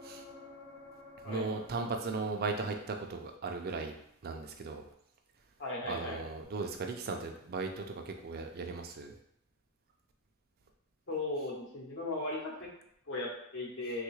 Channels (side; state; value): both; normal; correlation 0.01